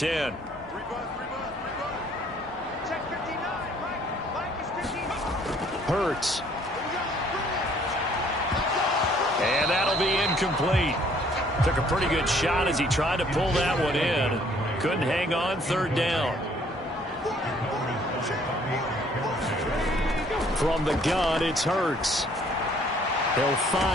Hurts. And that'll be incomplete. Took a pretty good shot as he tried to pull that one in. Couldn't hang on, 3rd down. From the gun, it's Hurts. They'll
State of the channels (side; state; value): both; normal; correlation 0.61